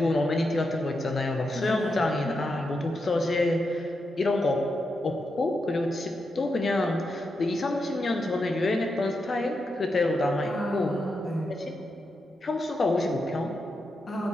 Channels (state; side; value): normal; both; correlation 0.86